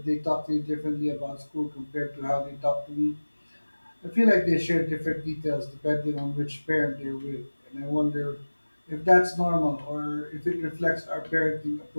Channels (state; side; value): inverted; both; correlation -1.00